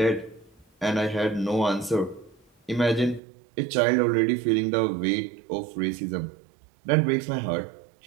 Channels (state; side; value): drops out; left; at 3.2 s